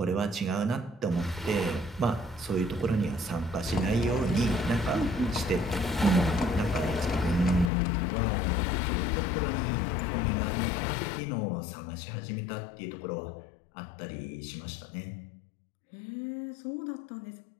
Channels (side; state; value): right; drops out; at 7.7 s